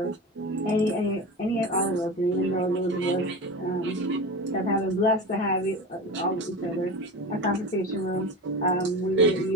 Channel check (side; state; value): both; normal; correlation 0.28